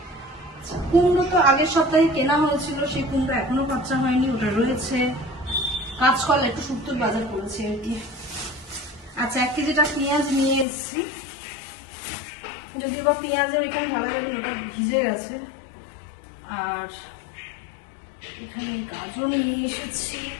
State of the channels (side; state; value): right; drops out; at 10.7 s